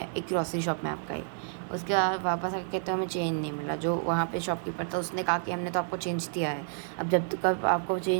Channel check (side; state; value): left; silent; digital silence